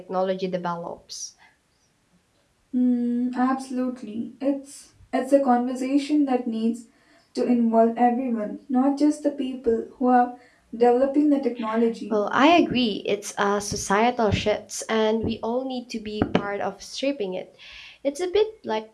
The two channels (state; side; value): identical; both; correlation 1.00